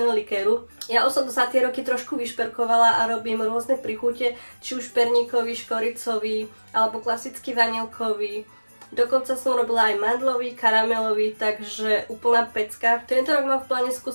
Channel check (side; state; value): both; inverted; correlation -1.00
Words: likéru. Ja už som to za tie roky trošku vyšperkovala a robím rôzne príchute, či už perníkový, škoricový alebo klasický vanilkový. Dokonca som robila aj mandlový, karamelový, takže úplná pecka. Tento rok mám v pláne